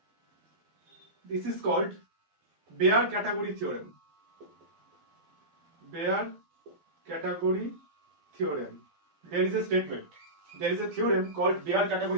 this is called bare category theorem. Bare category theorem. There is a statement. There is a theorem called bare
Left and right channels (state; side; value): late; left; 12 ms